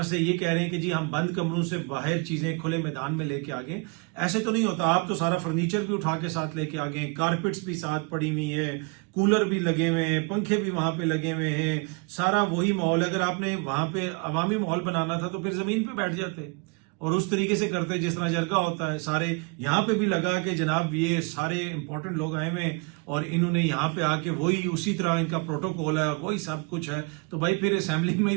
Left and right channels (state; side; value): quieter; left; 31.5 dB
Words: से ये कह रहे हैं कि जी हम बंद कमरों से बाहर चीजें खुले मैदान में लेके आ गए। ऐसे तो नहीं होता, आप तो सारा फर्नीचर भी उठा के साथ लेके आ गए, कारपेट्स भी साथ पड़ी हुई है, कूलर भी लगे हुए हैं, पंखे भी वहां पे लगे हुए हैं, सारा वही माहौल। अगर आपने वहां पे अवामी माहौल बनाना था तो फिर जमीन पे बैठ जाते और उस तरीके से करते जिस तरह जरगा होता है। सारे यहाँ पे भी लगा कि जनाब ये सारे इंपॉर्टेंट लोग आए हुए हैं और इन्होंने यहाँ पे आके वही उसी तरह इनका प्रोटोकॉल है और वही सब कुछ है, तो भाई फिर असेंबली में